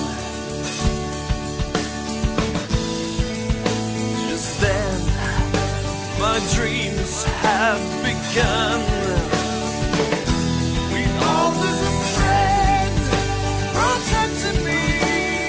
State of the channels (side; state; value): both; identical; correlation 1.00